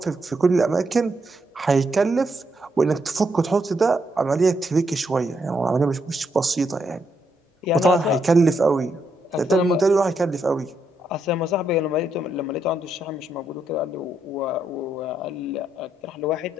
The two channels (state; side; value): normal; both; correlation 0.78